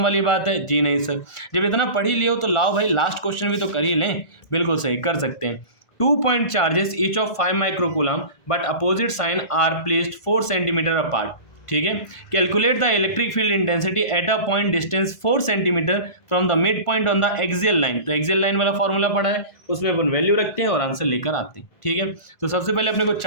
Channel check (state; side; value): late; right; 1.5 ms